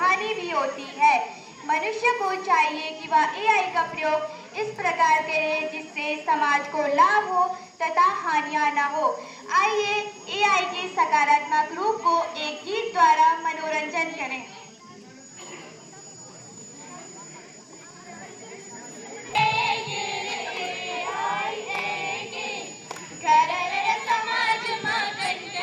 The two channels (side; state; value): both; identical; correlation 1.00